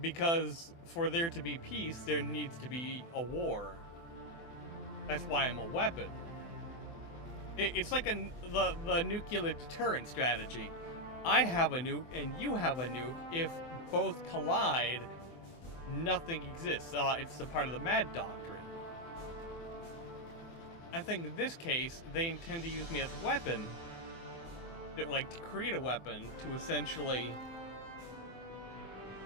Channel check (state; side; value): late; right; 24 ms